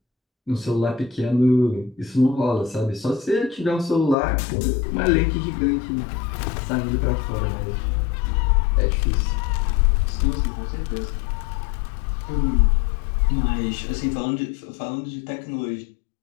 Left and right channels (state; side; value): drops out; right; at 4.2 s